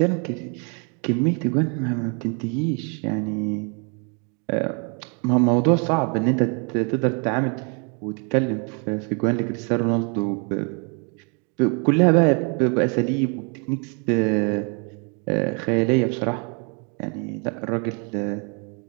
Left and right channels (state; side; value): quieter; left; 36.5 dB